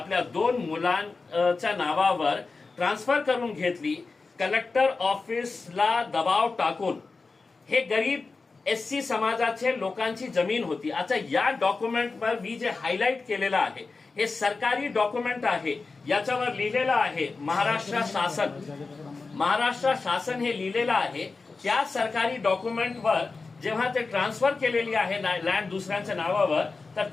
2 मुलांच्या नावावर ट्रान्सफर करून घेतली, कलेक्टर ऑफिसला दबाव टाकून। हे गरीब एससी समाजाचे लोकांची जमीन होती। आता या डॉक्युमेंटवर मी जे हायलाइट केलेलं आहे हे सरकारी डॉक्युमेंट आहे, याच्यावर लिहिलेलं आहे महाराष्ट्र शासन हे लिहिलेलं आहे। त्या सरकारी डॉक्युमेंटवर जेव्हा ते ट्रान्सफर केलेली आहे लँड दुसऱ्यांच्या नावावर तर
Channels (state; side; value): quieter; right; 4.1 dB